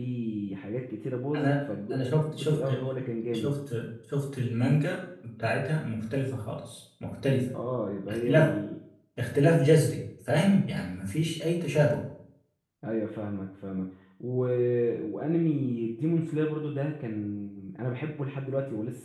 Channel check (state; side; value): identical; both; correlation 1.00